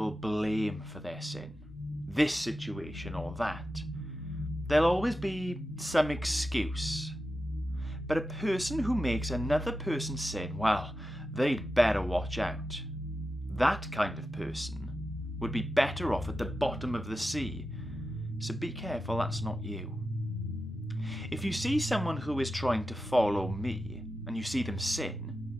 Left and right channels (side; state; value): both; normal; correlation 0.91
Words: blame for their sin. This situation or that. There'll always be some excuse. But a person who makes another person sin, well, they'd better watch out. That kind of person would be better off at the bottom of the sea. So be careful that's not you. If you see someone who is trying to follow me and you see them